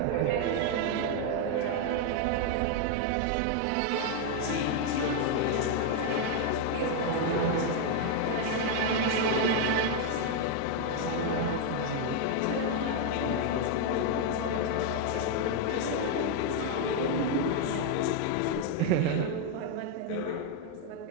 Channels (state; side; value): different; both; correlation 0.01